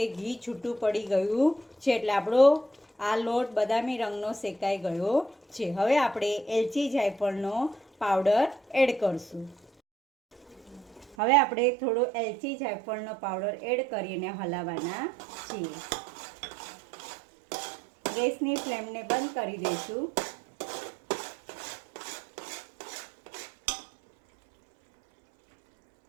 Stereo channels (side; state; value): left; drops out; at 11.2 s